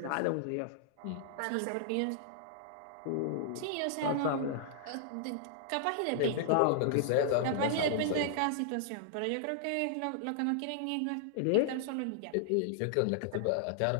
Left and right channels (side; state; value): both; different; correlation -0.01